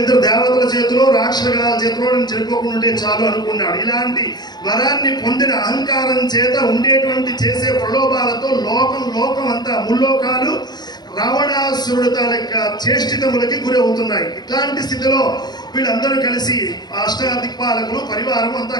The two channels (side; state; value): right; late; 0.20 ms